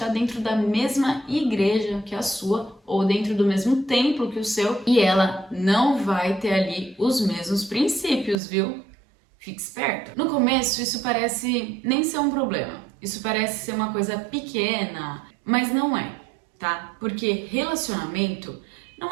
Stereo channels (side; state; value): left; drops out; at 8.3 s